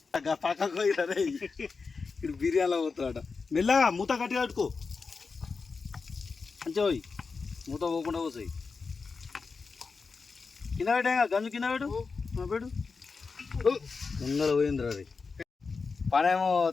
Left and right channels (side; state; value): right; quieter; 4.7 dB